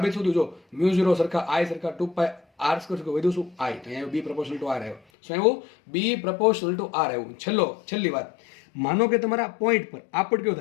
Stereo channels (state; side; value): drops out; right; at 5.0 s